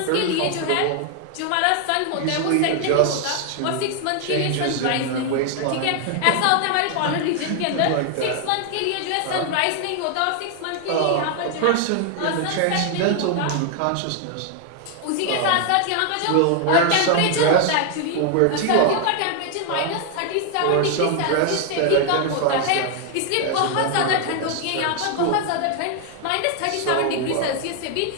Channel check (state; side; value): different; both; correlation 0.00